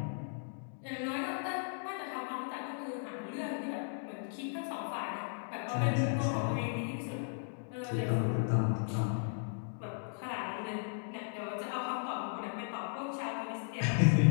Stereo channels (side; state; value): right; silent; digital silence